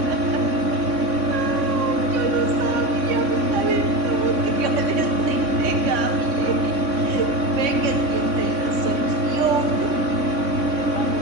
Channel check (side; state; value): left; late; 3.6 ms